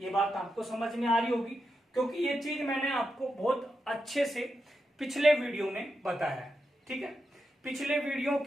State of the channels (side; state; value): both; normal; correlation 0.87